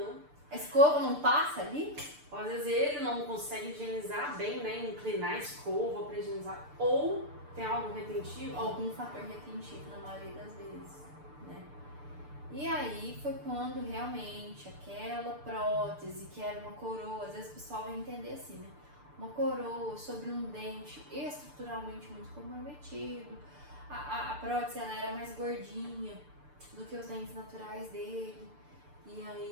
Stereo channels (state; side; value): late; left; 6.8 ms